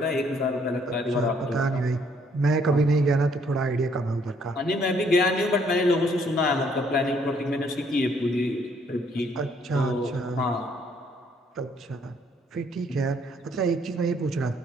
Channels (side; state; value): both; normal; correlation 0.66